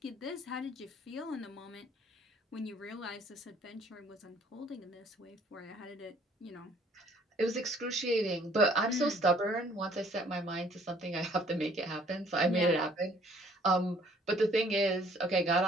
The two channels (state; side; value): normal; both; correlation 0.59